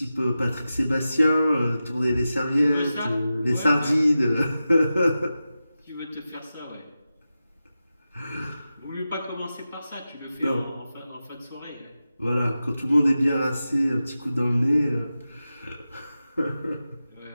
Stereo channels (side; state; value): both; inverted; correlation -0.93